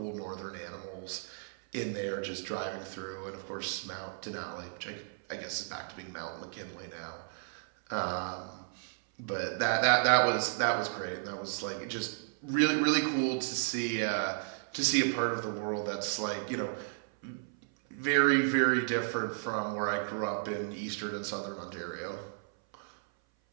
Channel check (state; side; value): silent; left; 55 dB below the other